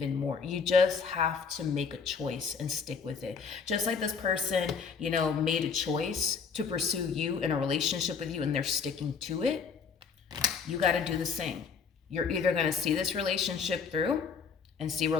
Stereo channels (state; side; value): quieter; right; 5.8 dB